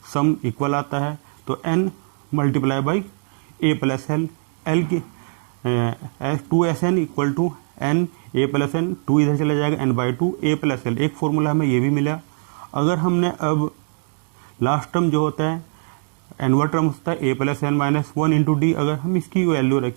सम इक्वल आता है। तो n multiply by A plus L, L की 2SN equal to n A plus N, 2 इधर चला जाएगा, n/2 ए प्लस एल। एक फॉर्मूला हमें ये भी मिला। अगर हमने अब लास्ट टर्म जो होता है एनवा टर्म होता है a plus N minus 1 into d, अगर हम इसकी वैल्यू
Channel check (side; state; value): left; silent; 64 dB below the other